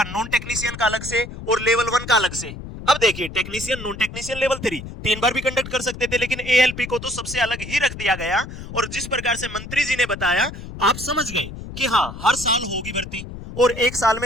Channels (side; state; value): left; noise; rumble, 11 dB below the sound